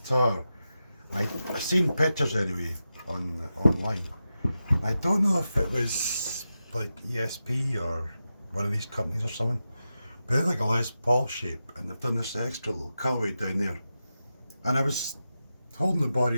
I've seen pictures anyway online. I don't know if it was like ESP or one of these companies or something. But they're like a Les Paul shape, and they've done this extra little cutaway down there. And I was holding the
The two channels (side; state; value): both; inverted; correlation -0.91